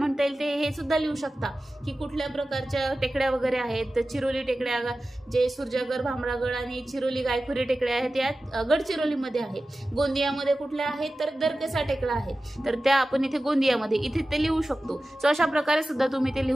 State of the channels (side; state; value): both; normal; correlation 0.95